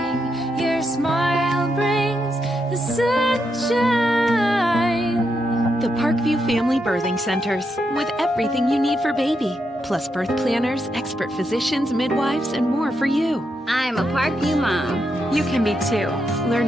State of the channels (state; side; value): normal; both; correlation 0.82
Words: your smile brings the sunshine. The Parkview Family Birthing Centers, with everything you need for baby, plus birth planners, expert physicians, midwives, and more for you. I'm a Parkview mom. You can be too.